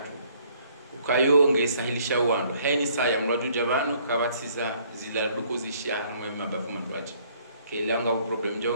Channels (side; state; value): both; inverted; correlation -0.62